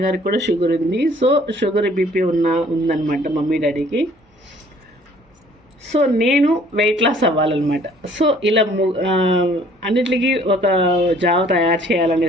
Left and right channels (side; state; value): both; normal; correlation 0.57